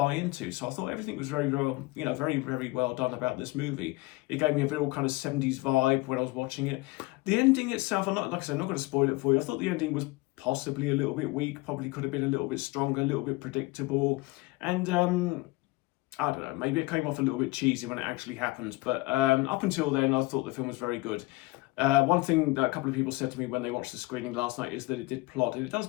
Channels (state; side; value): quieter; right; 22.1 dB